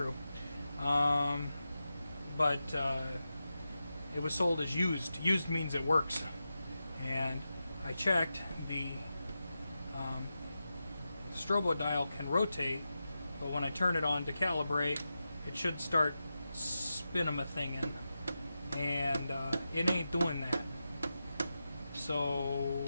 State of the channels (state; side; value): inverted; both; correlation -0.91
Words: But it was sold as used. Used means it works, and I checked. The strobo dial can rotate, but when I turn it on to calibrate, it should start spinning a thing in, and it ain't doing that.